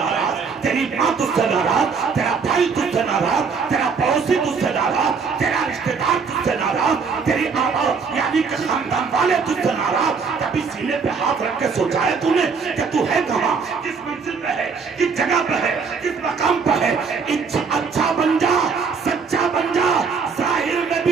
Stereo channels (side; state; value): left; quieter; 5.4 dB